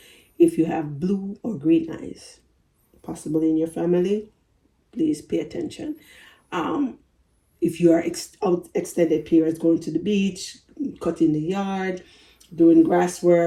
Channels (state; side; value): identical; both; correlation 1.00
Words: If you have blue or green eyes, possibly in your family, please pay attention. If you are out extended periods, going to the beach, cutting the yard, doing grass